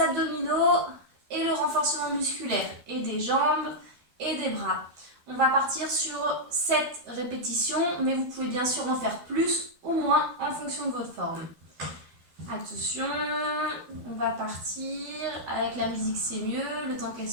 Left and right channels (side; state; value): left; late; 12 ms